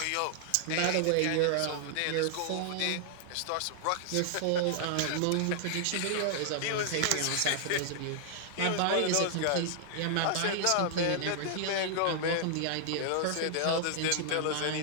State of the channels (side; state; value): both; different; correlation -0.01